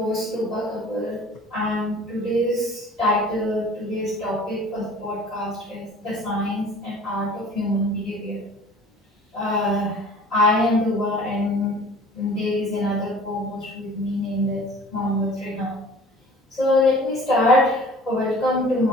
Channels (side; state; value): both; normal; correlation 0.46